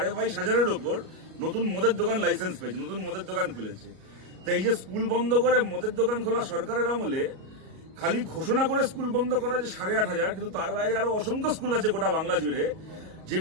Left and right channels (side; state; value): left; late; 38 ms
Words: ওপর নতুন মদের দোকান লাইসেন্স পেয়েছে, নতুন মদের দোকান খুলেছে। তাই এই যে স্কুল বন্ধ করে মদের দোকান খোলা সরকারের আমলে খালি ঘোষণা করে স্কুল বন্ধ করা যে 8,500, কিন্তু তার বাইরে আরো অসংখ্য স্কুল আছে গোটা বাংলা জুড়ে